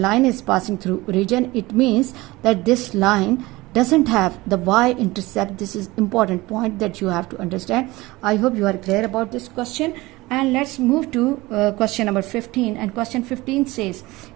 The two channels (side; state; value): left; quieter; 20.5 dB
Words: is passing through origin. It means that this line doesn't have the y-intercept. This is important point that you have to understand. I hope you are clear about this question. And let's move to question number 15. And question 15 says,